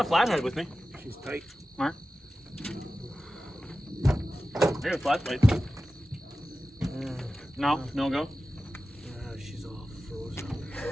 a flathead with me. She's tight. Mark. I got a flat plate. No, no go. she's all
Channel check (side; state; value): both; normal; correlation 0.95